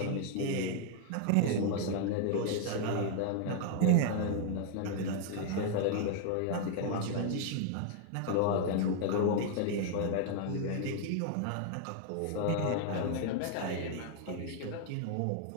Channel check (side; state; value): both; different; correlation 0.00